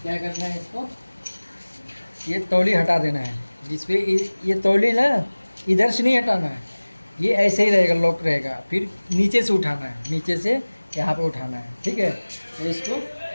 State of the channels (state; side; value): inverted; both; correlation -1.00